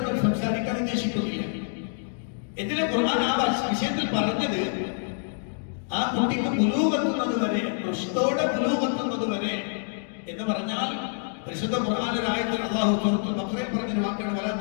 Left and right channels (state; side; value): silent; right; digital silence